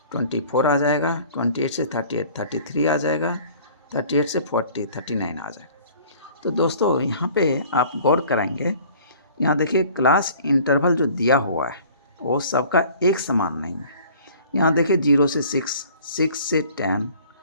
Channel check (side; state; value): both; inverted; correlation -0.50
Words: 24 आ जाएगा। 28 से 38 33 आ जाएगा। 38 से 40 39 आ जाएगा। तो दोस्तों यहाँ पे आप गौर करेंगे, यहाँ देखिए क्लास इंटरवल जो दिया हुआ है वो सबका एक समान नहीं है। यहाँ देखिए 0 से 6, 6 से 10